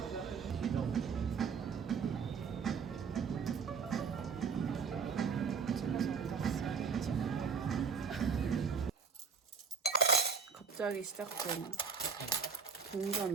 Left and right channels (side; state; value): left; quieter; 5.9 dB